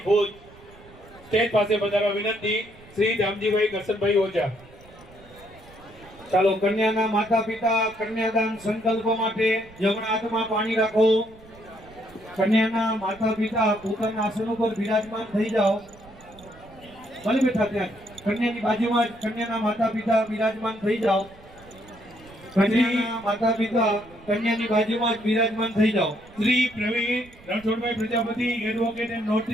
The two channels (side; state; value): right; noise; rumble, 23 dB below the sound